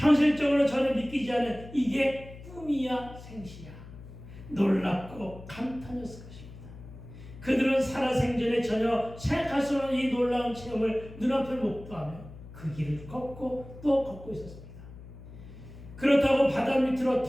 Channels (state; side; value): noise; left; hum, 16 dB below the sound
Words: 전혀 믿기지 않은 이게 꿈이야 생시야 놀랍고 감탄이었을 것입니다. 그들은 살아생전에 전혀 생각할 수 없는 이 놀라운 체험을 눈앞에 목도하며 그 길을 걷고 또 걷고 있었습니다. 그렇다고 바다 밑으로